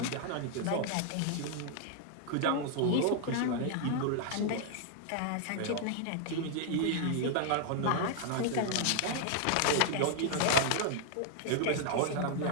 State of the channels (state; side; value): different; both; correlation 0.00